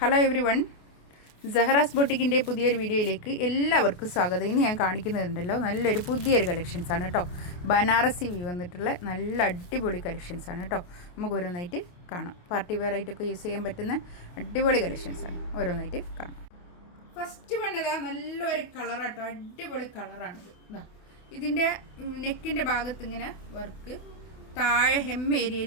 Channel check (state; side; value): late; right; 28 ms